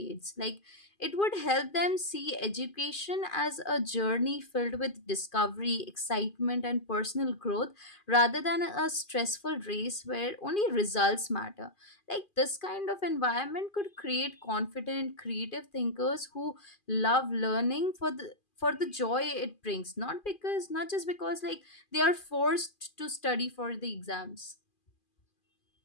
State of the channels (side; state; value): right; late; 2.4 ms